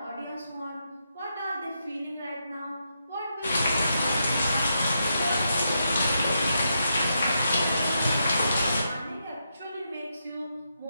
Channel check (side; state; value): both; inverted; correlation -0.82